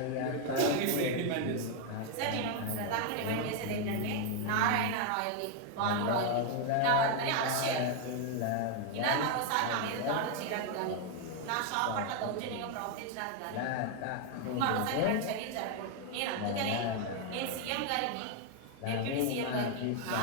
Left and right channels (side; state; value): both; different; correlation 0.01